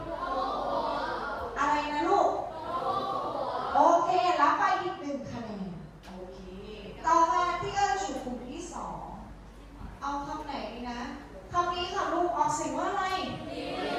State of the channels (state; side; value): identical; both; correlation 1.00